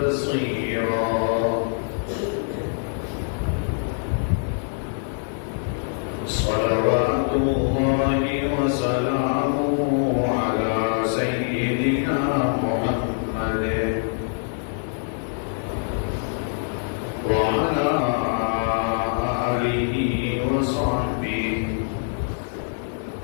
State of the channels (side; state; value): right; silent; digital silence